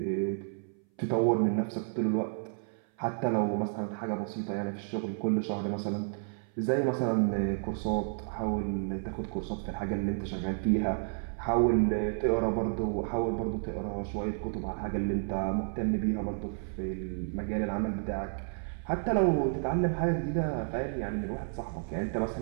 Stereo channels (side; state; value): left; silent; 57 dB below the other